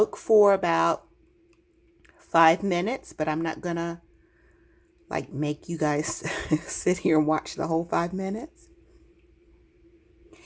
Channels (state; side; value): identical; both; correlation 1.00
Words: for about 5 minutes, but I'm not going to like make you guys sit here and watch the whole 5 minutes.